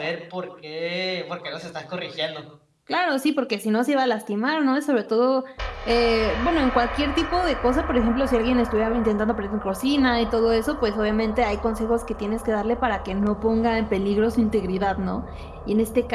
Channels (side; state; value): both; identical; correlation 1.00